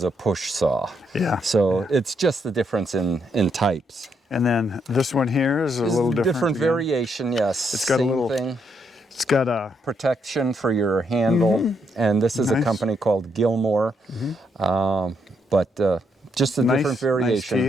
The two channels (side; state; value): both; normal; correlation 0.76